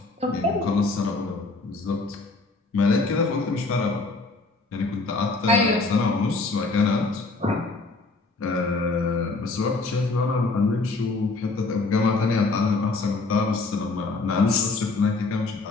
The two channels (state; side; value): quieter; right; 3.6 dB